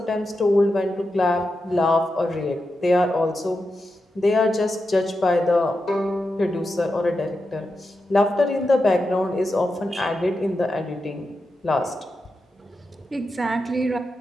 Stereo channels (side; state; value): both; normal; correlation 0.89